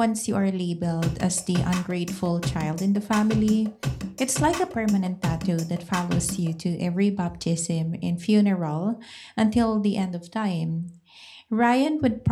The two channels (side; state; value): both; identical; correlation 1.00